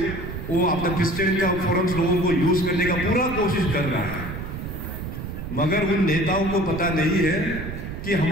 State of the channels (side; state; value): right; noise; rumble, 7 dB below the sound